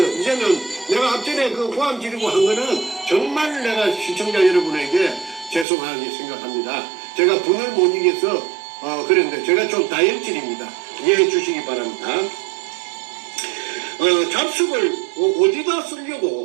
이제는 내가 앞전에 그 고함 지르고 한 거는 정말 내가 시청자 여러분에게 죄송하게 생각합니다. 제가 분을 못 이겨서 그랬는데 제가 좀 다혈질입니다. 이해해 주시기 바랍니다. 잡식을 어디다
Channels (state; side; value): drops out; left; at 5.7 s